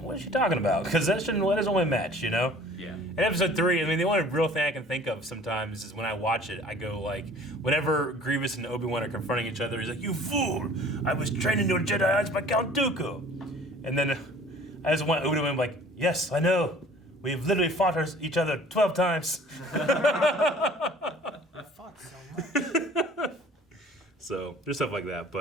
is she talking about? Because that doesn't only match, you know? Yeah. And episode 3, I mean, the only real thing I can think of sometimes is when I watch it, I go like, whenever Grievous and Obi-Wan are confronting each other, he's like, "You fool! I was trained into a Jedi by Count Dooku." And then I just want Obi-Wan like, "Yes, I know. We've literally fought each other 12 times." I fought so much. So there's stuff like that,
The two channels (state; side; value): normal; both; correlation 0.50